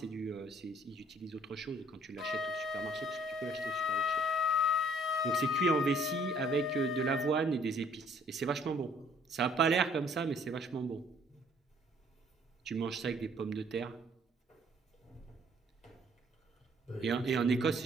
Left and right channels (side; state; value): both; normal; correlation 0.60